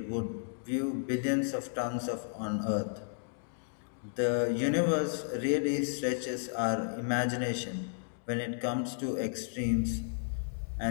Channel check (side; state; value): right; silent; digital silence